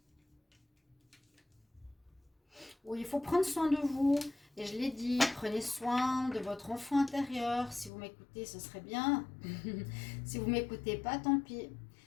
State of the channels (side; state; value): right; drops out; at 7.9 s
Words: Oui, il faut prendre soin de vous. Et je l'ai dit, prenez soin de votre enfant intérieur. Si vous m'écoutez, ce serait bien. Si vous ne m'écoutez pas, tant pis.